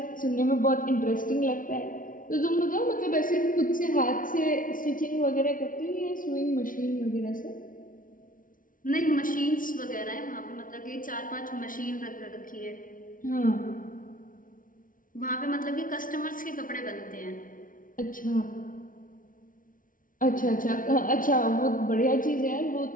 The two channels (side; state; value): right; late; 0.39 ms